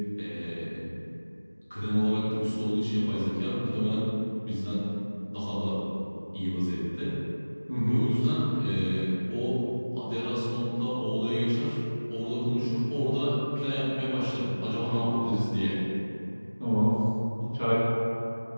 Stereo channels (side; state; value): both; inverted; correlation -1.00